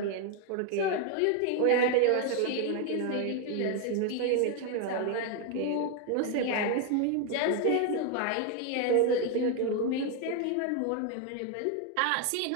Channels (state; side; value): different; both; correlation 0.01